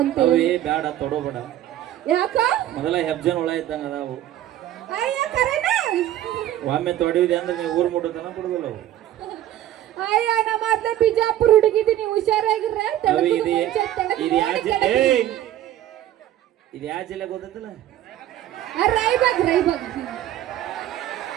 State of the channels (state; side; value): quieter; left; 12.7 dB